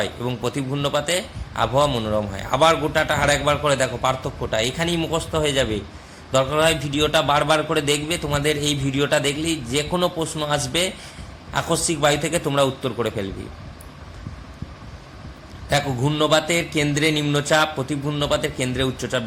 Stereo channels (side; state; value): both; identical; correlation 1.00